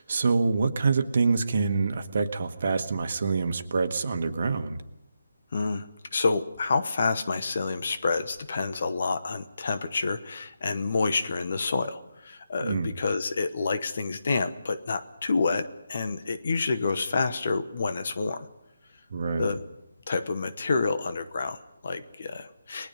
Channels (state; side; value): inverted; both; correlation -0.84